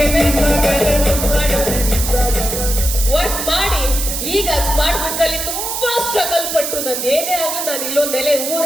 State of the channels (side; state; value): right; noise; hiss, 3 dB below the sound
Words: ವರ್ಕ್ ಮಾಡಿ ಈಗ ಸ್ಮಾರ್ಟ್ ವರ್ಕ್ ಅಲ್ಲಿ ತುಂಬಾ ಸ್ಟ್ರಗಲ್ ಪಟ್ಟು ನಂದು ಏನೇ ಆಗ್ಲಿ ನಾನು ಇಲ್ಲೊಂದು ನೆಲೆ